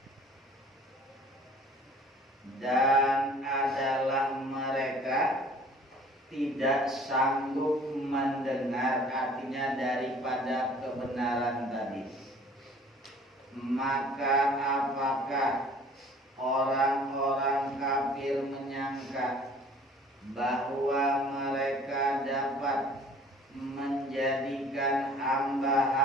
Dan adalah mereka tidak sanggup mendengar, artinya daripada kebenaran tadi. Maka apakah orang-orang kafir menyangka bahwa mereka dapat menjadikan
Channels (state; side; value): normal; both; correlation 0.51